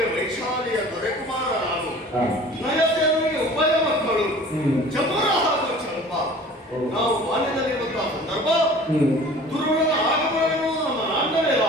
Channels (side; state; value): both; normal; correlation 0.45